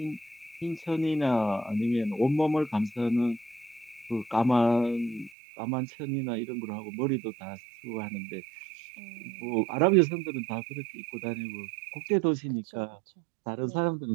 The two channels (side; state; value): left; drops out; at 5.3 s